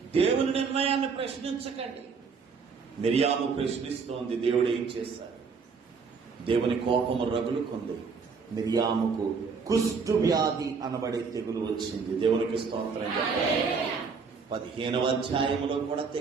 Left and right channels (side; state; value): left; quieter; 5.3 dB